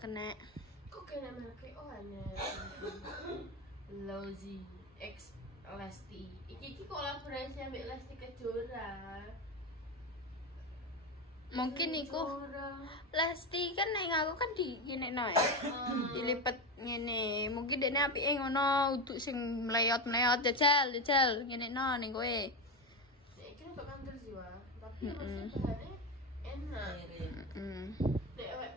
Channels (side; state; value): both; normal; correlation 0.16